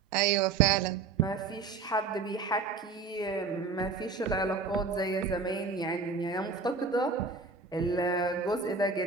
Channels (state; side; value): quieter; left; 4.6 dB